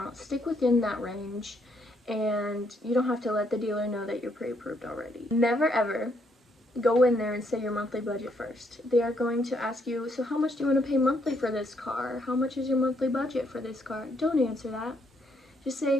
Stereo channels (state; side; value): normal; both; correlation 0.73